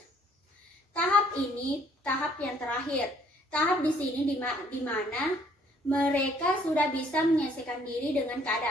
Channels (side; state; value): both; normal; correlation 0.63